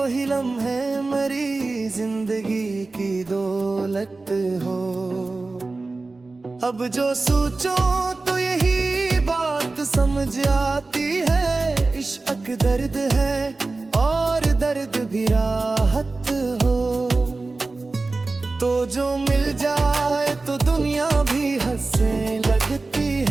लम्हे मेरी जिंदगी की दौलत हो। अब जो सोचो तो यही बात समझ आती है, इश्क दर्द है और दर्द भी राहत हो। तो जो मिल जाए तो दुनिया भी हंसने लगती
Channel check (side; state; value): left; quieter; 3.5 dB